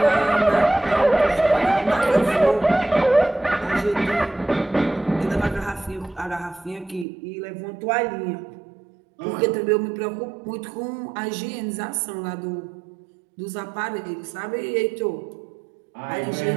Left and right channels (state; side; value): drops out; left; at 7.1 s